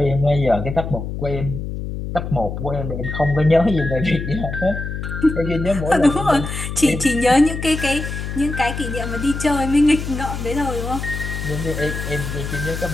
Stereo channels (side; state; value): left; noise; hum, 6 dB below the sound